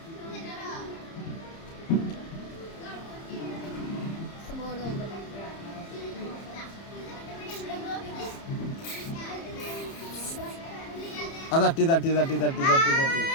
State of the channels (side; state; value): right; late; 30 ms